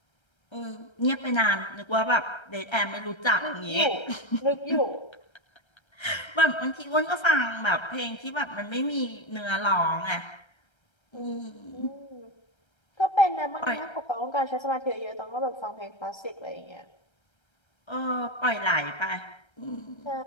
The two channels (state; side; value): late; right; 1.3 ms